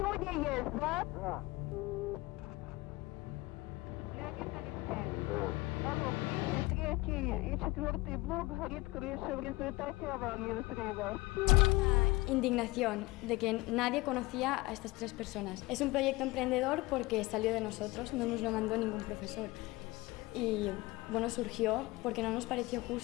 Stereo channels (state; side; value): quieter; right; 21.1 dB